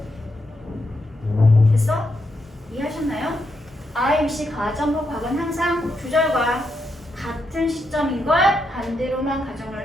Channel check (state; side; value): normal; both; correlation 0.82